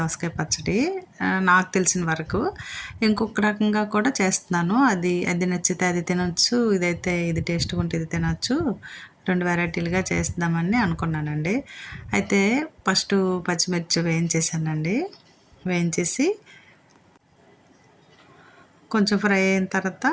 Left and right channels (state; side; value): identical; both; correlation 1.00